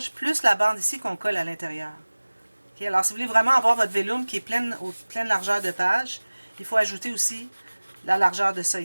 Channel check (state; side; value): inverted; both; correlation -1.00